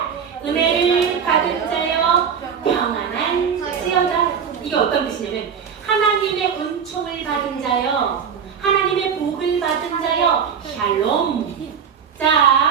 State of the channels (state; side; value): quieter; left; 7.1 dB